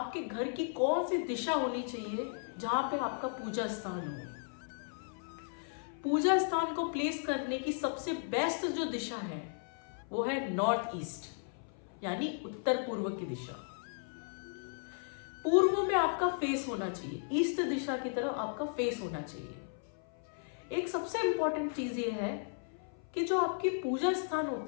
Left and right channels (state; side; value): silent; right; 54 dB below the other